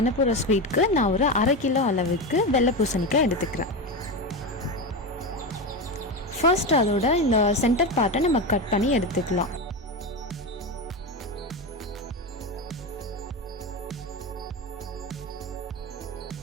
போகிற ஸ்வீட்க்கு நான் ஒரு 1/2 கிலோ அளவுக்கு வெள்ளை பூசணிக்காய் எடுத்துக்கிறேன். ஃபர்ஸ்ட் அதோட இந்த சென்டர் பார்ட்டை நம்ம கட் பண்ணி எடுத்துக்கலாம்.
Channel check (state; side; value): normal; both; correlation 0.18